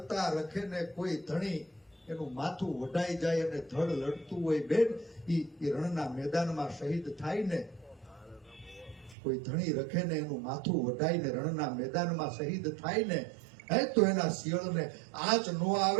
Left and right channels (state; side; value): drops out; left; at 9.2 s